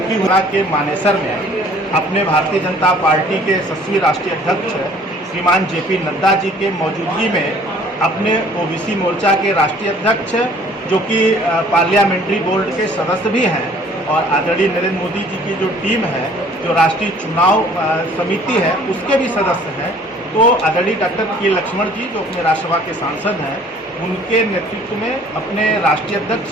हुआ के मानेसर में अपने भारतीय जनता पार्टी के यशस्वी राष्ट्रीय अध्यक्ष श्रीमान जेपी नड्डा जी के मौजूदगी में अपने ओबीसी मोर्चा के राष्ट्रीय अध्यक्ष, जो कि पार्लियामेंट्री बोर्ड के सदस्य भी हैं, और आदरणीय नरेंद्र मोदी जी की जो टीम है, जो राष्ट्रीय चुनाव समिति है, उसके भी सदस्य हैं, तो आदरणीय डॉक्टर के लक्ष्मण जी, जो अपने राज्यसभा के सांसद हैं, उनके नेतृत्व में अपने राष्ट्रीय अध्यक्ष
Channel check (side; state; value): both; normal; correlation 0.54